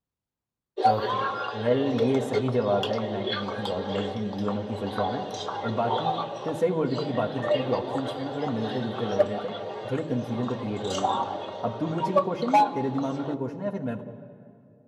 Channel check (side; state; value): both; identical; correlation 1.00